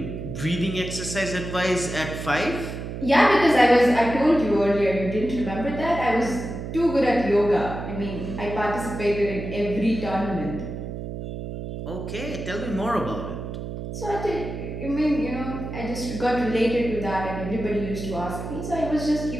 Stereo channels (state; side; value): noise; right; hum, 7 dB below the sound